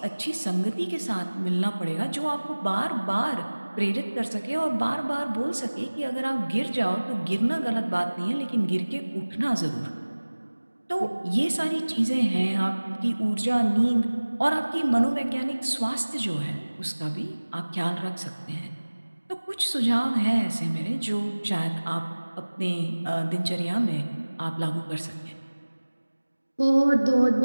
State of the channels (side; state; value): both; inverted; correlation -1.00